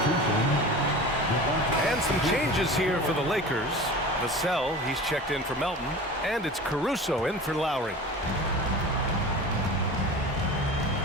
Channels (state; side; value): normal; both; correlation 0.36